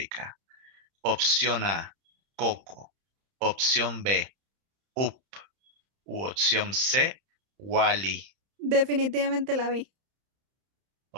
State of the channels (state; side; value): late; left; 31 ms